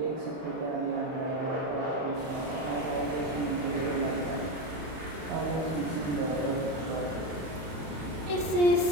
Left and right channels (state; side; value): late; left; 31 ms